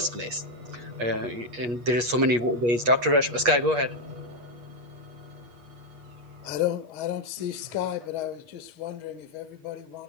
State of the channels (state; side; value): late; left; 8.4 ms